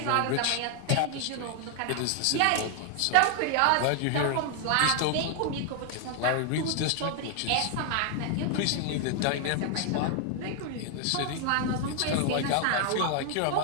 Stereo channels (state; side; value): different; both; correlation 0.00